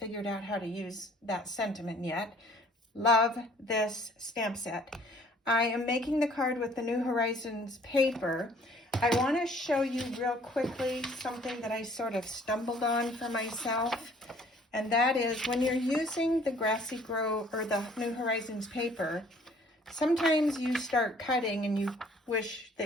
out how to use that sentiment yet. Love this stamp set. I am making the card with the New Horizons paper. I want to show you real quickly something that I sort of stumbled on for myself, and that is when you're using the Grassy Grove or the New Horizons paper, sometimes you start cutting and you wish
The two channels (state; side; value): normal; both; correlation 0.57